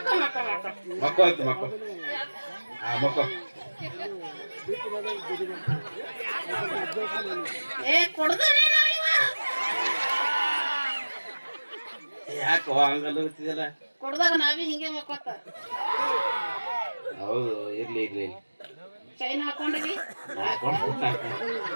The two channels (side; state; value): both; inverted; correlation -1.00